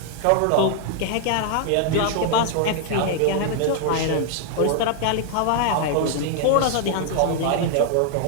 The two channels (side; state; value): both; different; correlation 0.00